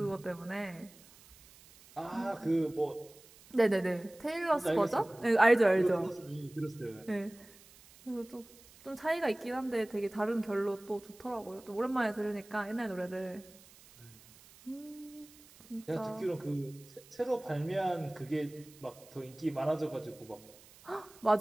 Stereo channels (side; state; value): right; noise; hiss, 23 dB below the sound